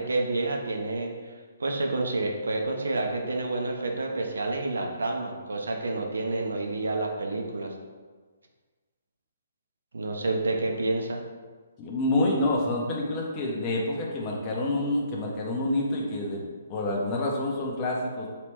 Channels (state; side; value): inverted; both; correlation -0.68